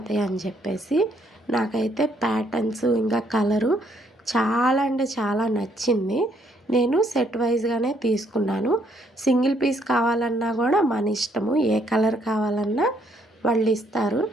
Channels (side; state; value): both; normal; correlation 0.69